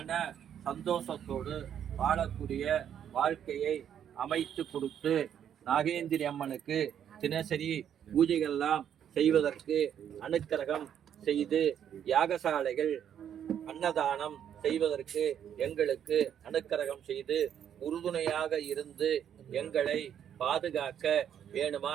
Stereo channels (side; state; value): left; quieter; 9.3 dB